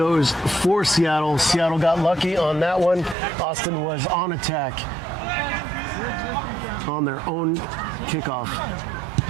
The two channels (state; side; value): drops out; left; at 3.2 s